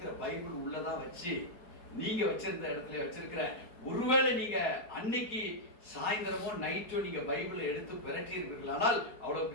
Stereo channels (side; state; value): right; late; 4.6 ms